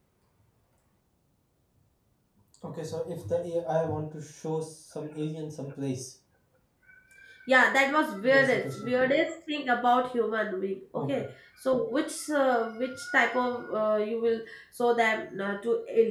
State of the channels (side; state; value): both; identical; correlation 1.00